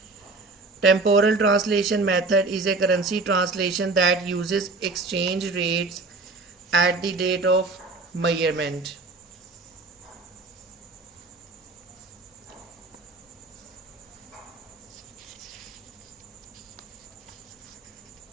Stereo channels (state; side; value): quieter; left; 3.6 dB